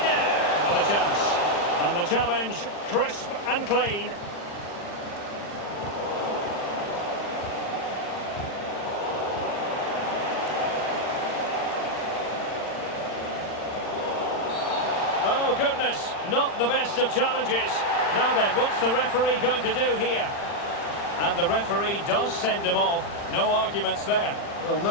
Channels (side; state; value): right; late; 40 ms